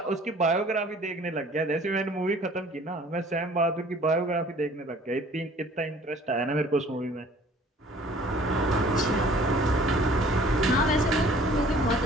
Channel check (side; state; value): both; normal; correlation 0.52